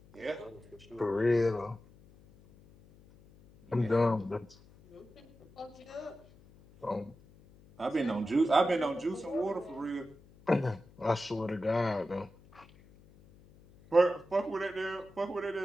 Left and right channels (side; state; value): left; noise; hum, 25 dB below the sound